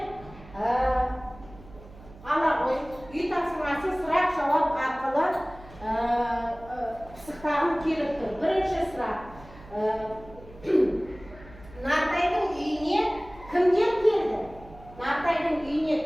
ала ғой. Үй тапсырмасын сұрақ жауап арқылы пысықтағым келіп тұр. Бірінші сұрақ. Нартайдың үйіне кімдер келді? Нартайдың үйіне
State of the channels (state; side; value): noise; right; hum, 20 dB below the sound